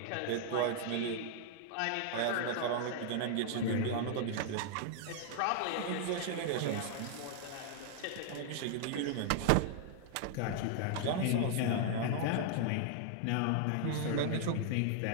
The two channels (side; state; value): both; different; correlation -0.01